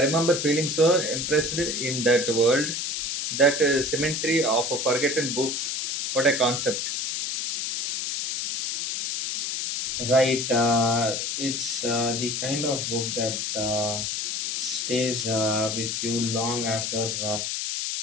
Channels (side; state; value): left; noise; hiss, 2 dB below the sound